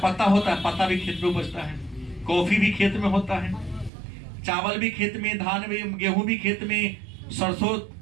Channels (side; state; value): left; drops out; at 3.9 s